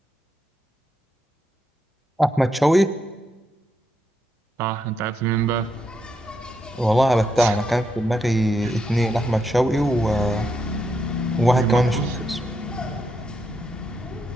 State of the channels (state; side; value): normal; both; correlation 0.81